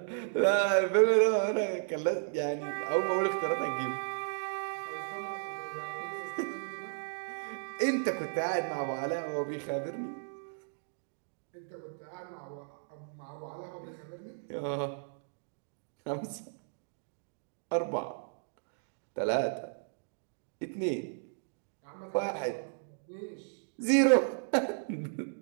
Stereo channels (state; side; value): silent; left; digital silence